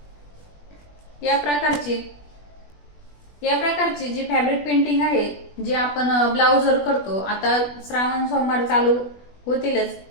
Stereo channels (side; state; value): right; late; 20 ms